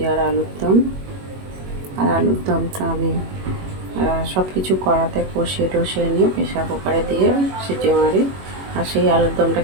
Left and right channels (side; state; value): left; late; 21 ms